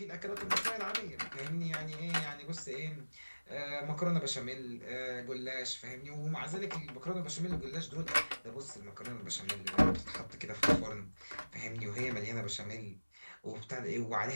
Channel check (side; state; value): both; inverted; correlation -1.00